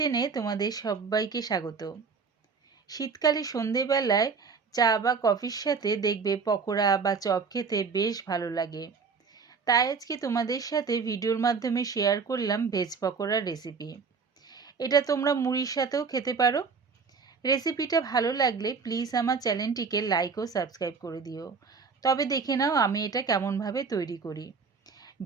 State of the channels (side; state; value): left; quieter; 5.2 dB